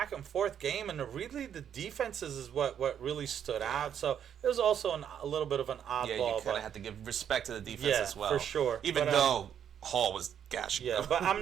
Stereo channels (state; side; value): quieter; left; 8.9 dB